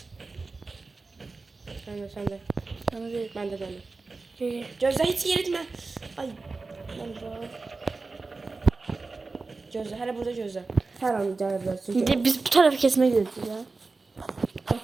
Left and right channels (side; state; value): left; quieter; 3.8 dB